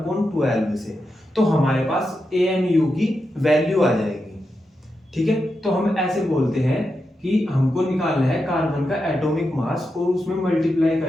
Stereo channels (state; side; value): normal; both; correlation 0.87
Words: से, तो हमारे पास AMU की वैल्यू आ जाएगी। ठीक है, तो हम ऐसे बोलते हैं कि हमको निकालना है कार्बन का एटॉमिक मास और उसमें मल्टीप्लाई